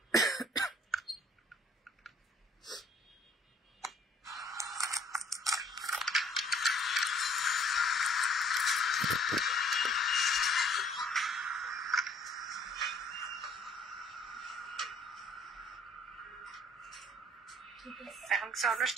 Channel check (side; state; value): both; normal; correlation 0.58